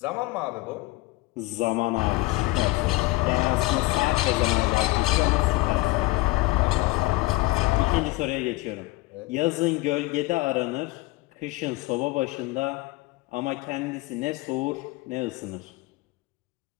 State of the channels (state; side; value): quieter; right; 20.6 dB